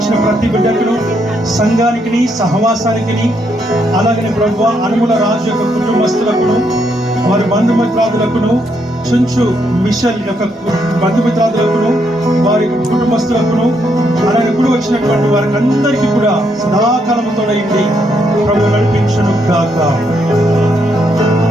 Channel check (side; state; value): both; normal; correlation 0.76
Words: ప్రతి బిడ్డకును, సంఘానికి, సహవాసానికి, అలాగనే ప్రభువా అనుముల రాజు యొక్క కుటుంబస్తులకును, వారి బంధుమిత్రాదులకును, చుంచు మిషల్ యొక్క బంధుమిత్రాదులకును, వారి కుటుంబస్తులకును, అలాగే కూడా వచ్చినటువంటి వారికి అందరికీ కూడా సదాకాలముతో ప్రభు నడిపించును గాక.